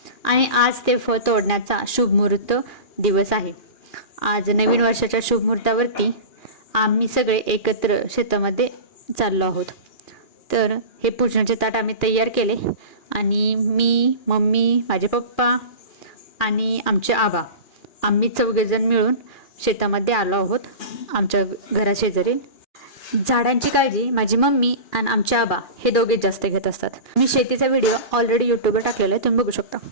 आणि आज ते फळ तोडण्याचा शुभमुहूर्त दिवस आहे। आज नवीन वर्षाच्या शुभमुहूर्तावरती आम्ही सगळे एकत्र शेतामध्ये चाललो आहोत। तर हे पूजनाचे ताट आम्ही तयार केले आणि मी, मम्मी, माझे पप्पा आणि आमचे आबा आम्ही चौघेजण मिळून शेतामध्ये आलो आहोत। आमच्या घराशेजारी झाडांची काळजी माझी मम्मी आणि आमचे आबा हे दोघे जास्त घेत असतात। मी शेतीचा व्हिडिओ ऑलरेडी यूट्यूबवर टाकलेला आहे, तुम्ही बघू शकता।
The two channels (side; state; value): right; late; 2.4 ms